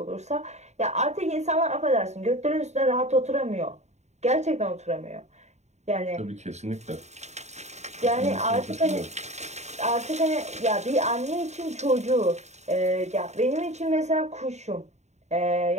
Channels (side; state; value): left; late; 0.33 ms